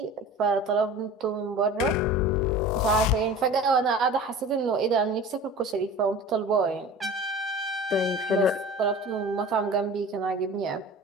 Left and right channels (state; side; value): normal; both; correlation 0.39